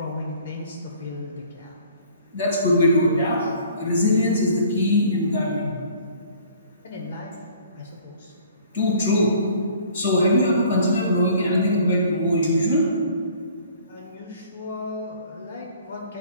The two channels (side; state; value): both; inverted; correlation -0.53